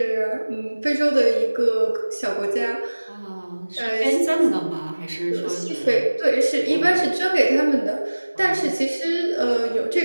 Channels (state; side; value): inverted; both; correlation -1.00